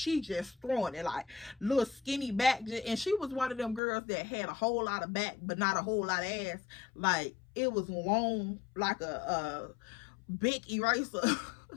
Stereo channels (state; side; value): drops out; right; at 3.8 s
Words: just throwing it, like, little skinny back. And she was one of them girls that had a whole lot of back, but not a whole lot of ass. Like, it was long, like a big eraser.